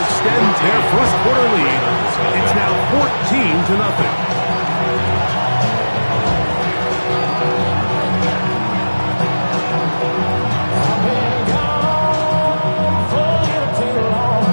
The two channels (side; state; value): both; inverted; correlation -1.00